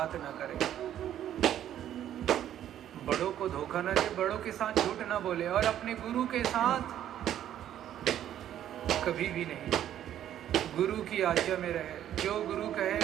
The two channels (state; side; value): quieter; left; 11.1 dB